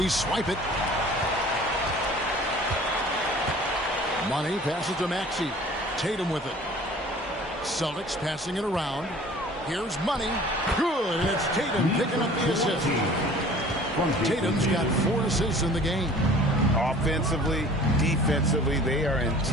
swipe it. Money passes to Maxey. Tatum with it. Celtics passing it around. Here's Money. Good. And it's Tatum picking up the assist. Tatum's got 4 assists in the game. Offensively, defensively, they are in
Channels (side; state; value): both; normal; correlation 0.47